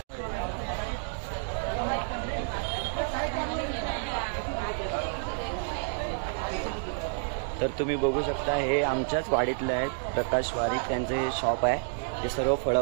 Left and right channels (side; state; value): left; silent; digital silence